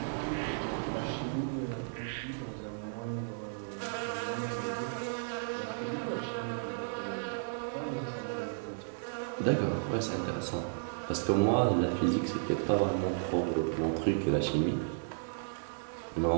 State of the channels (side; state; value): left; silent; digital silence